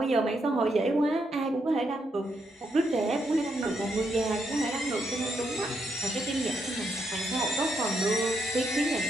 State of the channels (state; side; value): normal; both; correlation 0.79